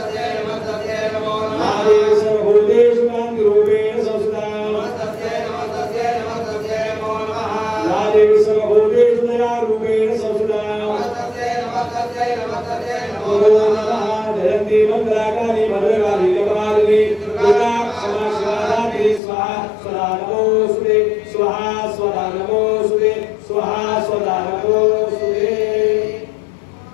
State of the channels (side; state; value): right; drops out; at 19.2 s